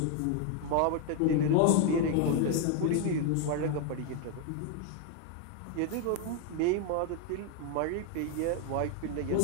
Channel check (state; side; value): different; both; correlation 0.01